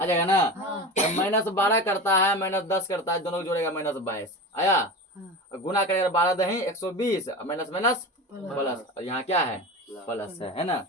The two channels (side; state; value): both; normal; correlation 0.29